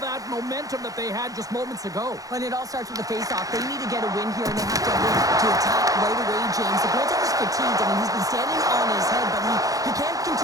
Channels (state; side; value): late; left; 0.17 ms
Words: momentum that they had just moments ago. But it all starts with the face-off. They need to get a win here, and they have to win to attack right away, James. The goaltender's fatigued. I mean, he's been standing on his head, but he can't